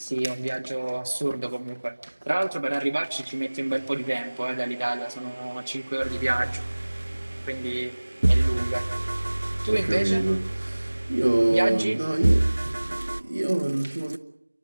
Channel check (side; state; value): both; inverted; correlation -1.00